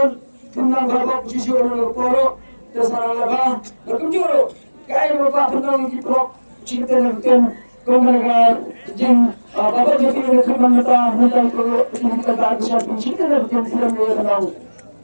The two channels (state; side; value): inverted; both; correlation -1.00